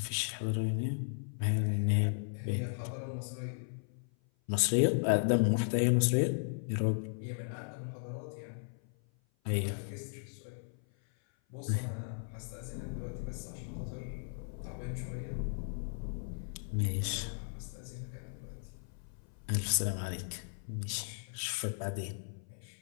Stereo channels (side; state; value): right; silent; 54 dB below the other